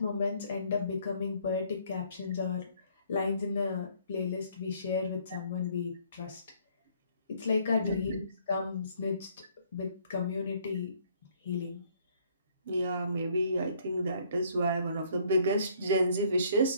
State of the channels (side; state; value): both; inverted; correlation -0.63